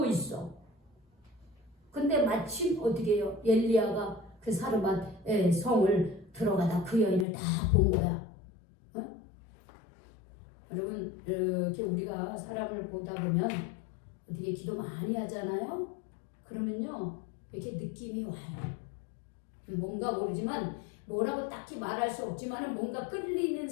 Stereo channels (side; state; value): right; drops out; at 7.2 s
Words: 있어. 근데 마침 어떻게 해요? 엘리야가 그 사르밧의 성을 들어가다 그 여인을 다 본 거야. 여러분 이렇게 우리가 사람을 보다 보면 어떻게 기도 많이 하잖아요. 그러면요 이렇게 느낌이 와요. 뭔가 모르지만 뭐라고 딱히 말할 수 없지만 뭔가 끌리는